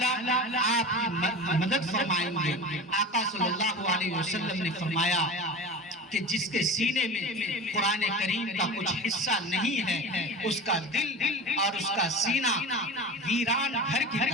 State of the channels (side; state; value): both; normal; correlation 0.31